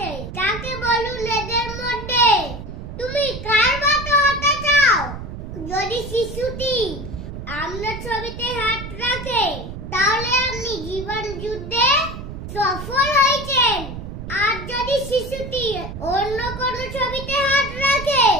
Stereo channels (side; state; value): right; noise; rumble, 9 dB below the sound